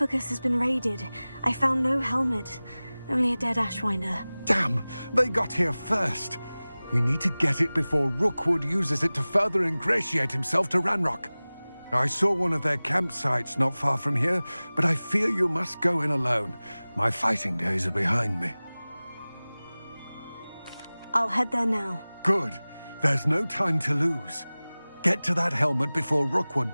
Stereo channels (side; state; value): both; inverted; correlation -0.99